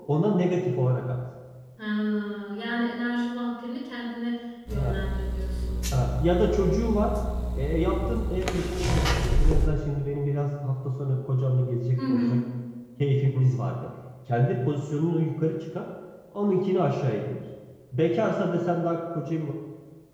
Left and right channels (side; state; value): both; identical; correlation 1.00